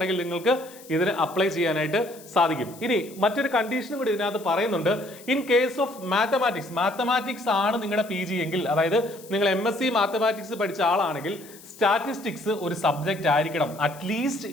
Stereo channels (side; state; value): left; noise; hiss, 20 dB below the sound